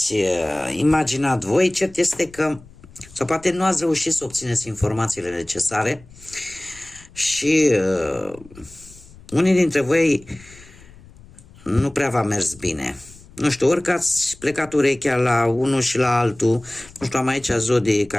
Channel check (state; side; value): noise; left; rumble, 23 dB below the sound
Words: imaginat voi. Cert este că, sau poate nu ați reușit să obțineți informațiile necesare și unii dintre voi nu prea v-a mers bine. Nu știu, ori că ați plecat urechea la unul și la altul, nu știu, am aici zodie, ca